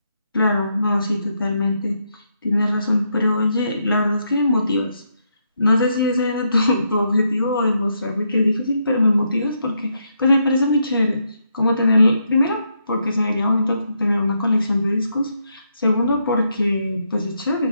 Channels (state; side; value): inverted; both; correlation -0.79